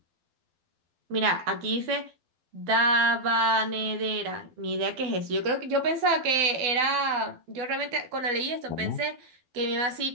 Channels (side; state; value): left; late; 12 ms